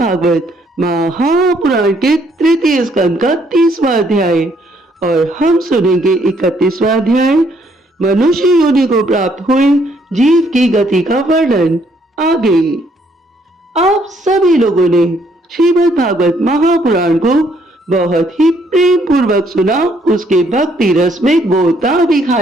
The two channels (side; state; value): both; normal; correlation 0.68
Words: महापुराण के 3य स्कंद का 30वां अध्याय और हम सुनेंगे 31वां अध्याय। मनुष्य योनि को प्राप्त हुए जीव की गति का वर्णन। आगे आप सभी लोगों ने श्रीमद् भागवत महापुराण को बहुत ही प्रेम पूर्वक सुना, उसके भक्ति रस में गोता भी